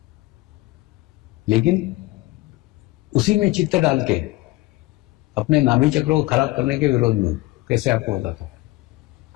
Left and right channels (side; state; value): right; quieter; 20.1 dB